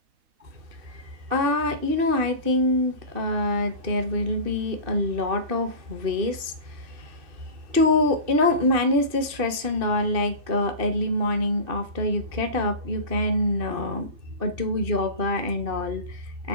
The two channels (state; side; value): late; left; 2.7 ms